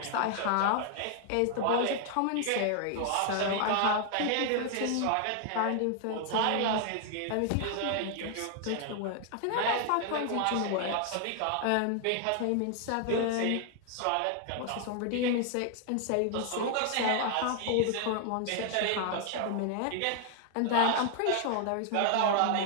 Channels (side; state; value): both; different; correlation 0.00